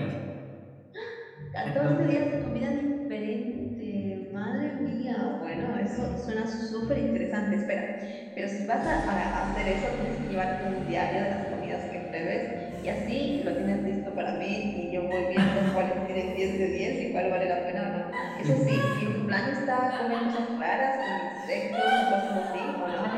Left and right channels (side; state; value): both; identical; correlation 1.00